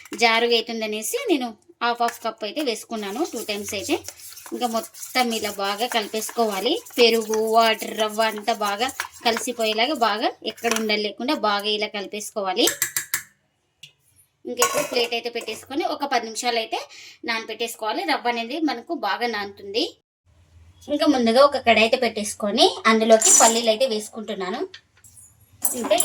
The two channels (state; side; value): identical; both; correlation 1.00